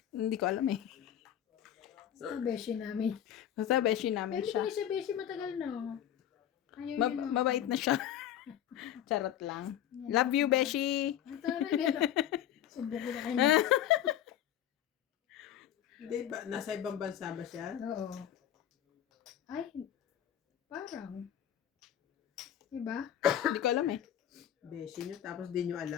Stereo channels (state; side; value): quieter; right; 10.8 dB